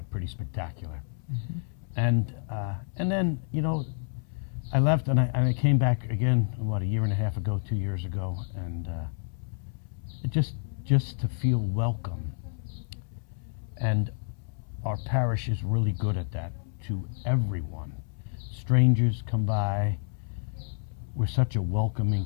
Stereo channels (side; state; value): right; silent; 59 dB below the other